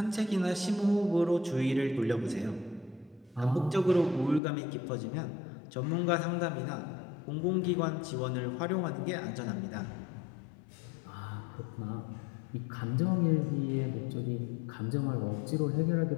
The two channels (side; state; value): right; drops out; at 4.4 s